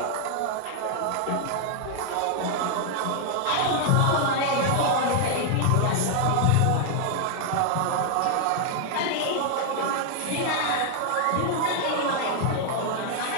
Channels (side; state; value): both; different; correlation 0.00